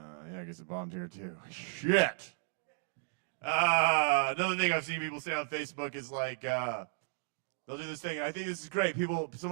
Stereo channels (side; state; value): left; silent; digital silence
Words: I guess it bombed here too. Shit. Another thing I've seen people say on Facebook is like, they'll do this thing. And I think this is great.